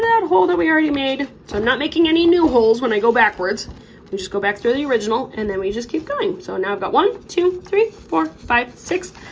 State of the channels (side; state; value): both; identical; correlation 1.00